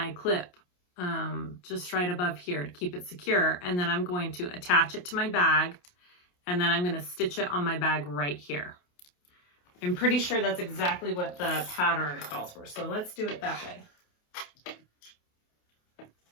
clip just right above here to keep it secure. And then I'm going to attach it to my bag and then I'm going to stitch it on my bag right here. I'm pretty sure that's exactly what the pattern calls for. So let's do it that way.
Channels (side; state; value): right; late; 28 ms